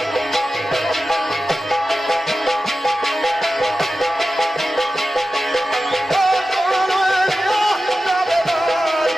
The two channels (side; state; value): both; normal; correlation 0.94